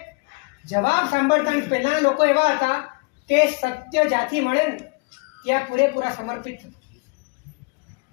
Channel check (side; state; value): right; quieter; 31.5 dB